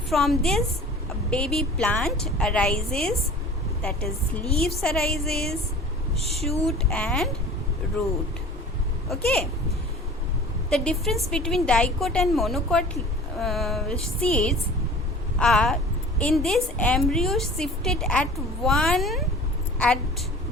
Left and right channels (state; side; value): normal; both; correlation 0.43